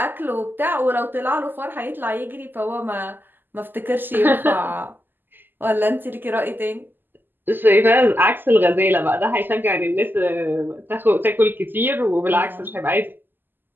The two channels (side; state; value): left; late; 0.092 ms